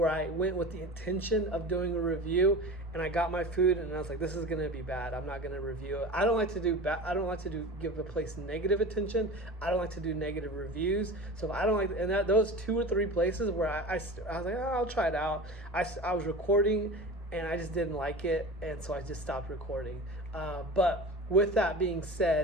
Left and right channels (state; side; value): normal; both; correlation 0.34